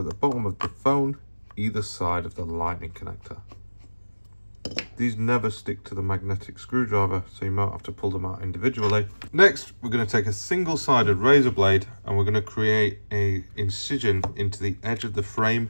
the bottom of the phone, either side of the lightning connector. These never stick to the magnetic screwdriver, so you might have to pull them out individually. Next, we're going to take a single-sided razor blade and we're going to create an incision into the edge of the frame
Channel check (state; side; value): inverted; both; correlation -1.00